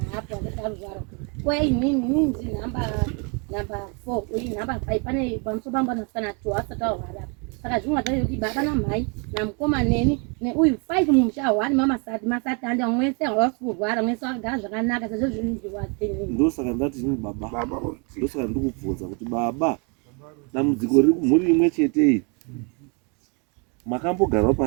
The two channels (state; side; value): quieter; left; 35.0 dB